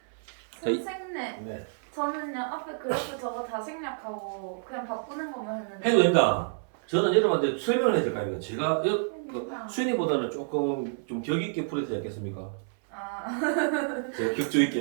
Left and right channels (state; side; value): silent; left; 59 dB below the other